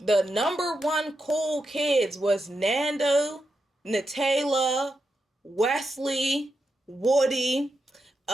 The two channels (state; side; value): normal; both; correlation 0.86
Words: The number one cool kids was Nando, Nutella, Wesley, Woody.